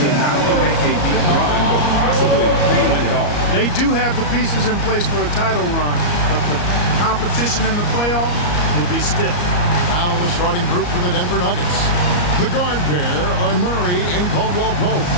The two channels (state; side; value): late; right; 34 ms